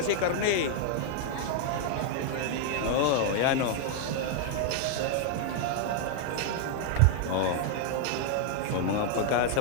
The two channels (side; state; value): both; different; correlation 0.00